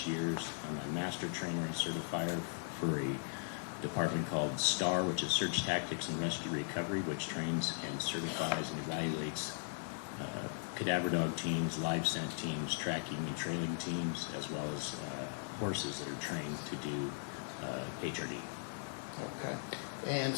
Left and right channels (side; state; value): right; silent; 52 dB below the other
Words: years. I'm a master trainer and certifier for a department called STAR, which is Search Tactics and Rescue Recovery, which trains and certifies and evaluates cadaver dog teams, live scent teams, tracking and trailing teams, as well as horses that are trained to do HRD. Okay. And